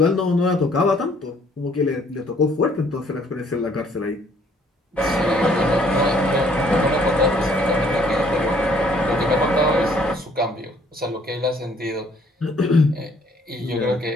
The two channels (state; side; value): normal; both; correlation 0.62